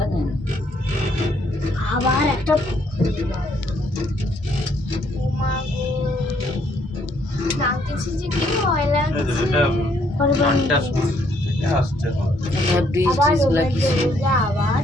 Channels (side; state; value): both; normal; correlation 0.69